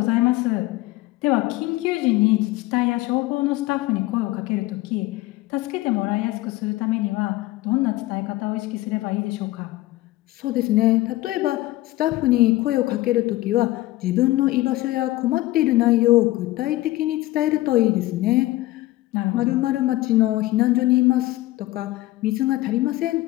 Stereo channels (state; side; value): quieter; right; 17.8 dB